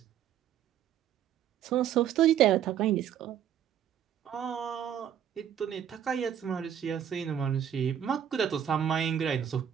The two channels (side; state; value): left; quieter; 9.6 dB